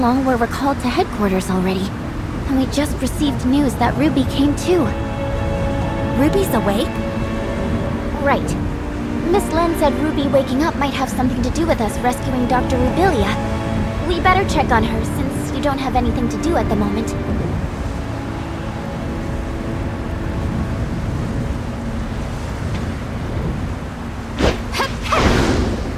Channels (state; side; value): identical; both; correlation 1.00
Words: were recalled to headquarters already. And we just received news that Ruby came too. Ruby's awake? Right. Miss Lin said Ruby waking up might have something to do with us rescuing Dr. Rubilia. We better check on her since you don't have anything to do at the moment.